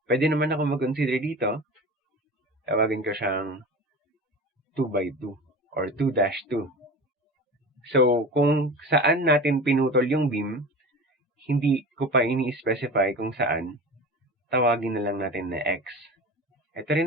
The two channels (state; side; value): normal; both; correlation 0.33